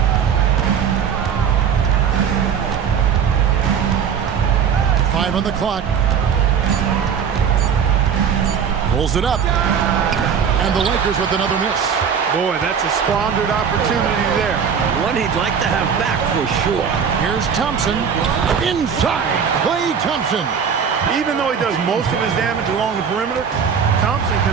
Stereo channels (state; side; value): quieter; left; 7.2 dB